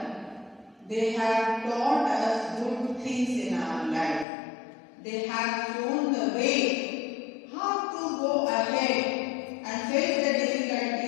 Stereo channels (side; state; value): right; drops out; at 4.2 s